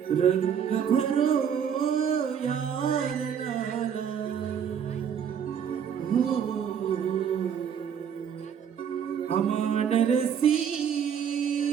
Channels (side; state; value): left; quieter; 8.0 dB